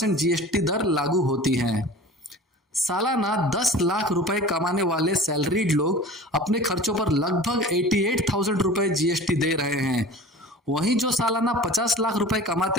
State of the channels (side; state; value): both; normal; correlation 0.40